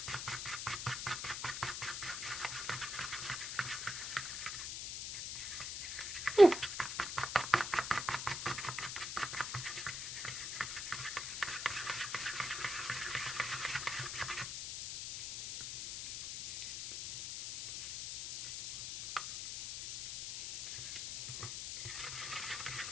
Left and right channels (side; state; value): left; noise; hiss, 5 dB below the sound